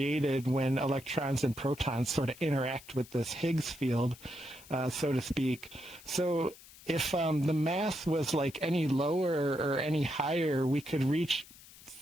when electrons and protons sort of interact with this Higgs field, so to speak. So if the mass was like any lower or any higher, we could reach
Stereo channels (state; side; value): noise; left; hiss, 20 dB below the sound